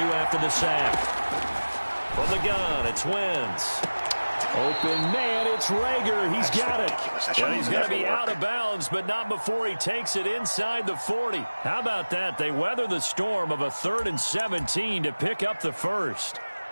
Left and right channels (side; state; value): both; inverted; correlation -1.00